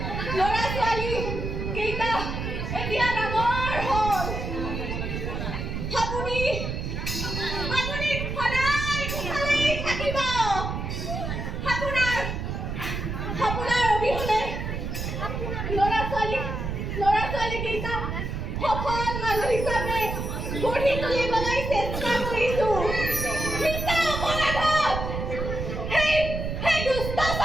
ল'ৰা ছোৱালী কেইটা এতিয়া ডাঙৰ হ'ল। আপুনি সদায় ভালেই থাকিব। আপোনাৰ অবিহনে ল'ৰা ছোৱালী কেইটা সফল মানুহ হিচাপে গঢ়ি তুলিবলৈ চেষ্টা কৰিছো। সেই দুষ্ট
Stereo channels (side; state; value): right; noise; rumble, 4 dB below the sound